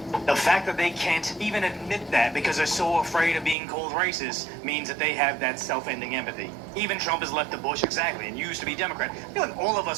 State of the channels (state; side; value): drops out; left; at 3.6 s